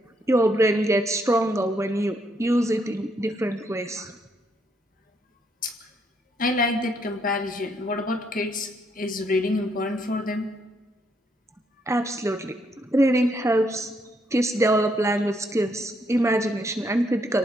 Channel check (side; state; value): both; normal; correlation 0.73